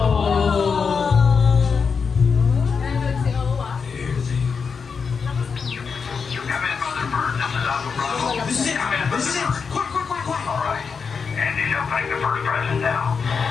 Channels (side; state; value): right; quieter; 5.6 dB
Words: This is it. Quick. All right. Andy, you'll take the first present now.